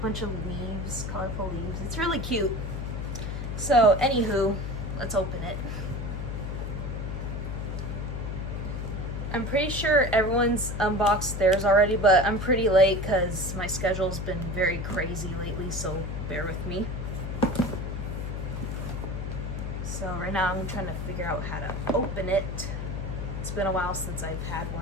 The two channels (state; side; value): noise; left; hum, 4 dB below the sound